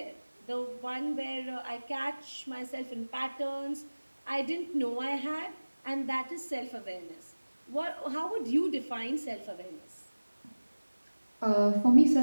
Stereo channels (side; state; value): both; inverted; correlation -1.00